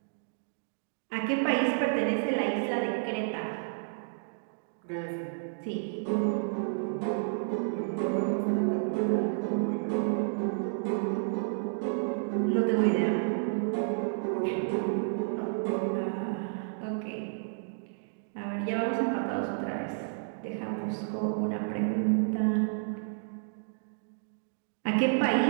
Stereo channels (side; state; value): left; silent; digital silence